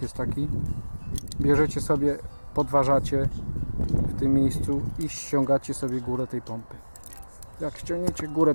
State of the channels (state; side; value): inverted; both; correlation -1.00